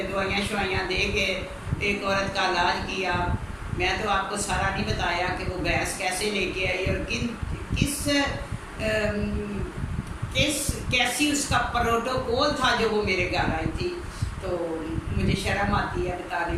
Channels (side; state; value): both; identical; correlation 1.00